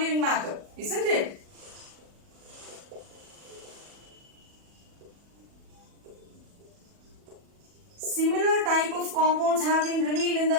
matter, isn't it? Similar type of compounds have been revealed in the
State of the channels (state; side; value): late; left; 40 ms